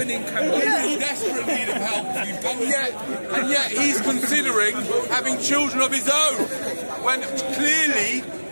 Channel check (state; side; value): inverted; both; correlation -1.00